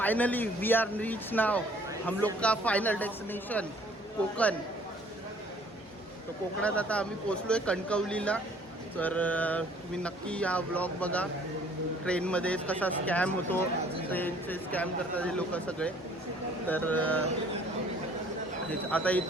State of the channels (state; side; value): normal; both; correlation 0.57